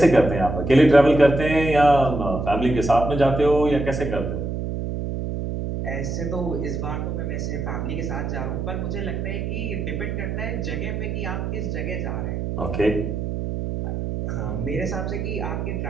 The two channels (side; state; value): right; noise; hum, 3 dB below the sound